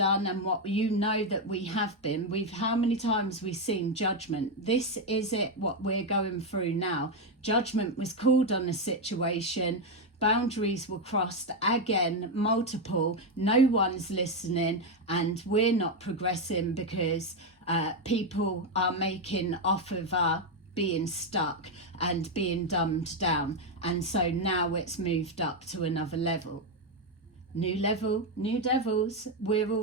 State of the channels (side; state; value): both; normal; correlation 0.05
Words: and what that we have been. How many times we've seen judgment. This is it, what we're going through now. Judgment was called on a situation, boundaries were crossed again, multiple, no one's listening, and we're not progressing because people are making off of our being stuck and being dumbed down. And so now it's moved up to another level, new devils, we're